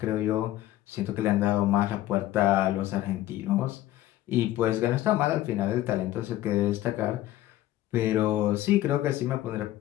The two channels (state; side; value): quieter; right; 14.7 dB